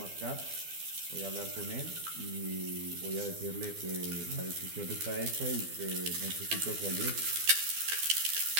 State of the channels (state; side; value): late; left; 12 ms